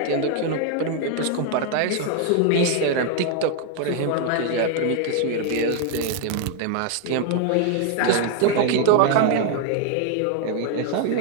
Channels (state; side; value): different; both; correlation 0.00